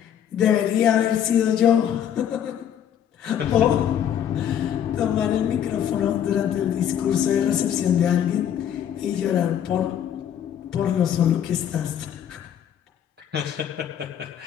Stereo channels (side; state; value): right; quieter; 9.6 dB